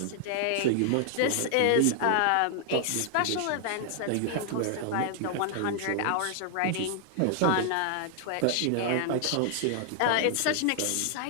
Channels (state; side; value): different; both; correlation 0.00